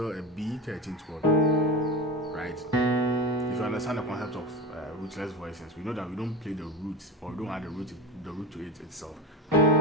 a B 13th chord, right? If you understand the concept of rootless voicings, we know that we don't play the root, or we don't add the root to it itself.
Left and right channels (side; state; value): both; normal; correlation 0.24